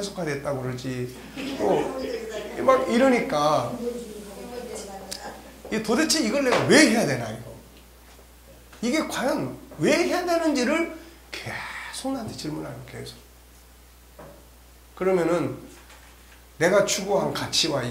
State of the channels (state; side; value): identical; both; correlation 1.00